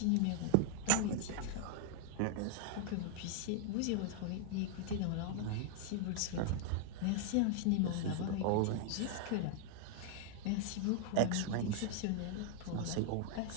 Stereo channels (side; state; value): both; different; correlation 0.00